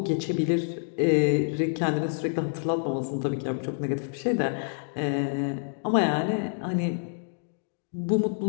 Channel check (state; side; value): silent; right; digital silence